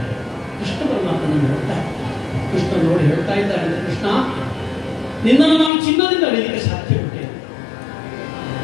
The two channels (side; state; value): right; drops out; at 5.7 s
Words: ಕೃಷ್ಣ ಪರಮಾತ್ಮನನ್ನು ನೋಡ್ತಾರೆ. ಕೃಷ್ಣ ನೋಡಿ ಹೇಳ್ತಾ ಇದ್ದಾರೆ, ಕೃಷ್ಣ, ನಿನ್ನನ್ನು ನಾನು ಚಿನ್ನದಿಂದ ಅಳಿಲಿಕ್ಕೆ ಸಾಧ್ಯ ಉಂಟೆ.